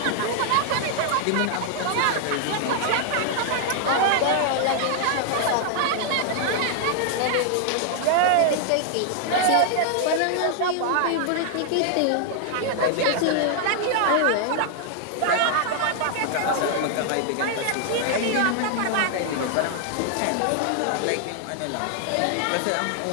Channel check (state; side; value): different; both; correlation 0.00